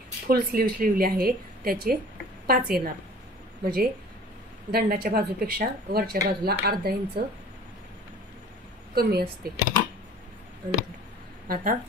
फुल स्लीव शिवली आहे, त्याचे 5 येणार, म्हणजे दंडाच्या बाजूपेक्षा वरच्या बाजूला अर्धा इंच कमी असते. आता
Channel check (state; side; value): normal; both; correlation 0.46